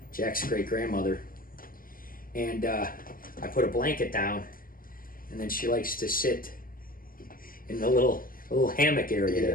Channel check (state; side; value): late; right; 0.41 ms